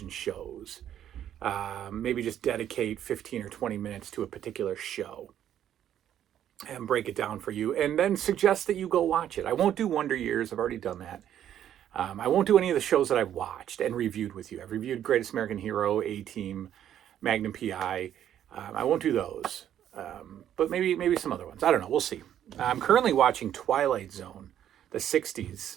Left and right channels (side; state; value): left; quieter; 10.6 dB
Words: shows. Maybe just dedicate 15 or 20 minutes to a particular show and break it down for you, and then suggest that you go watch it. I won't do Wonder Years. I've already done that. I won't do any of the shows that I've watched and reviewed with you. I've reviewed Greatest American Hero, A-Team, Magnum PI. I won't do those, but maybe some other ones. I don't know. We'll see. I'm currently watching Twilight Zone, the